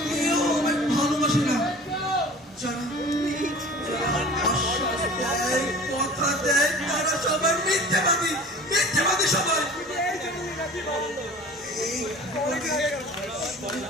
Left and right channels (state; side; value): normal; both; correlation 0.42